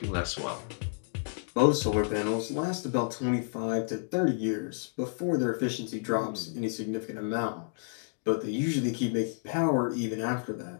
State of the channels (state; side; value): silent; right; digital silence